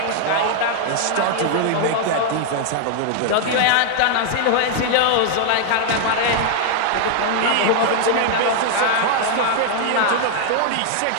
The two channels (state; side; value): different; both; correlation 0.00